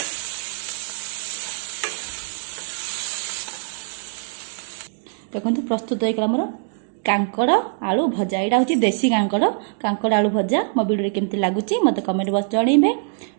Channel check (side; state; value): left; silent; digital silence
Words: देखो प्रस्तुत होगा मोर कांकड़ आलू भजा। यहाँ हूँ देसी कांकड़ कांकड़ आलू भजा। मो वीडियो केमती लगुच मत कमेंट बॉक्स जनइबे।